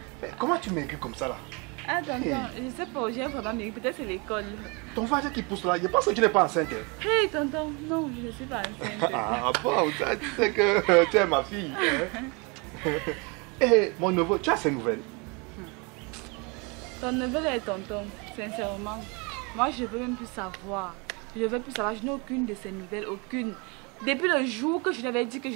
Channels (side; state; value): left; quieter; 30.5 dB